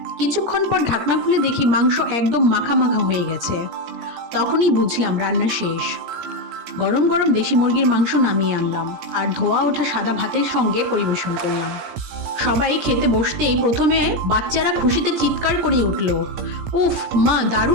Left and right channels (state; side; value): late; left; 17 ms